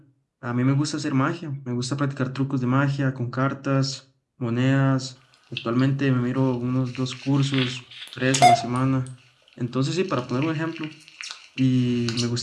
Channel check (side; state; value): both; identical; correlation 1.00